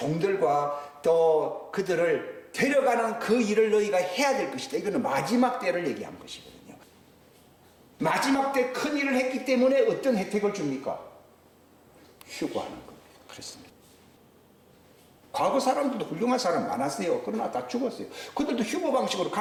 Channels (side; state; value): both; identical; correlation 1.00